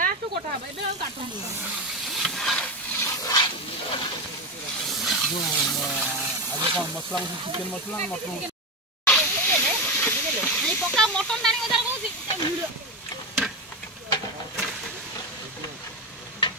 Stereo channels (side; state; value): both; normal; correlation 0.15